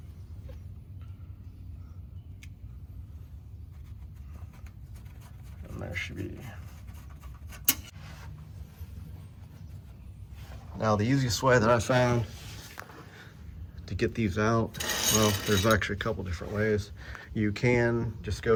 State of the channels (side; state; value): both; identical; correlation 1.00